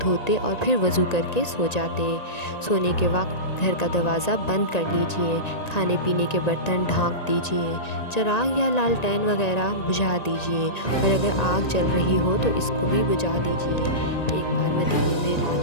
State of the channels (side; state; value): right; late; 1.9 ms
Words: دھوتے اور پھر وضو کر کے سو جاتے۔ سونے کے وقت گھر کا دروازہ بند کر لیجئے، کھانے پینے کے برتن ڈھانک دیجئے، چراغ یا لالٹین وغیرہ بجھا دیجئے، اور اگر آگ جل رہی ہو تو اس کو بھی بجھا دیجئے۔ ایک بار مدینے میں